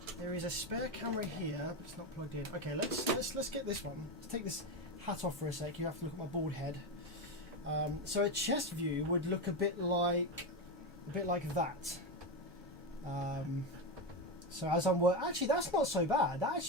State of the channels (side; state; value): both; normal; correlation 0.13